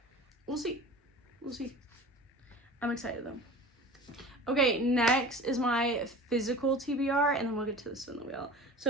We'll see. We'll see. I'm excited though. Okay, next is my physical TBR, and then we'll get to the spin the wheel.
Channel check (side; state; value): both; normal; correlation 0.38